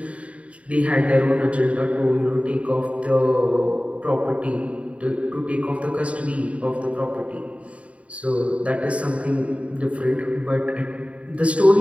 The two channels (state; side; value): late; left; 0.064 ms